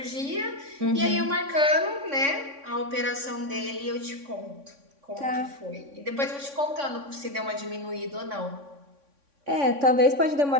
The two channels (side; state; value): left; late; 3.6 ms